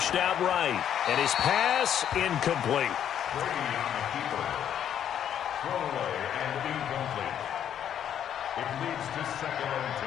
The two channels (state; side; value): quieter; right; 9.6 dB